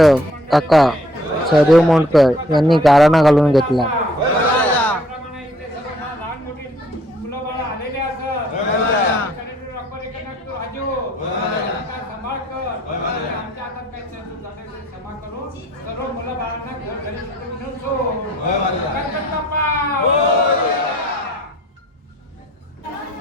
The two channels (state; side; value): normal; both; correlation 0.60